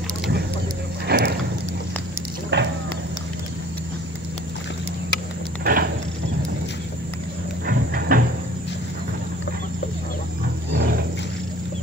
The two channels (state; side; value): normal; both; correlation 0.50